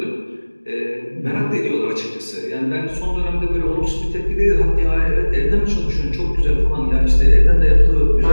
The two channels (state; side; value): inverted; both; correlation -1.00